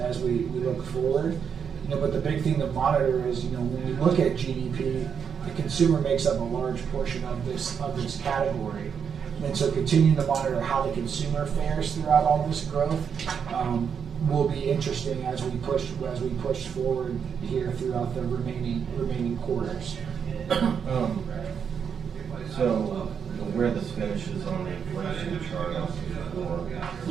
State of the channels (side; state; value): left; quieter; 7.1 dB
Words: we look forward. But the big thing to monitor is, when we look at GDP, the consumer makes up a large portion of this category. And so continuing to monitor how the consumer fares throughout all this growth will be interesting as we push forward here throughout the remaining quarters. So where this finishes on the inflation chart on page 4.